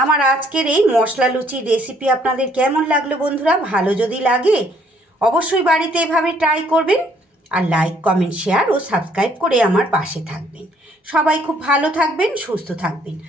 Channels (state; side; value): normal; both; correlation 0.65